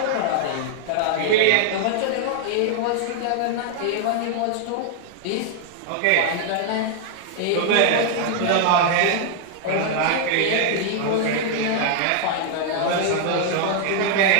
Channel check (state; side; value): different; both; correlation 0.00